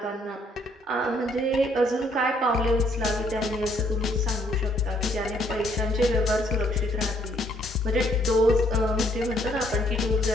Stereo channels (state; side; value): normal; both; correlation 0.67